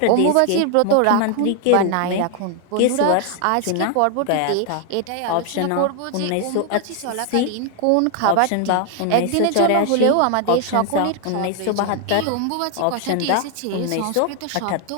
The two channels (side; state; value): both; different; correlation 0.00